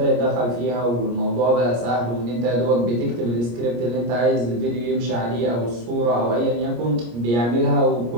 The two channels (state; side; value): late; left; 25 ms